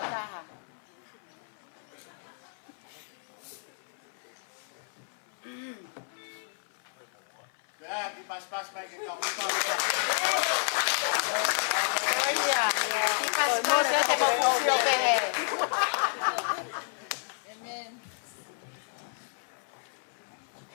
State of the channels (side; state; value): right; silent; 57 dB below the other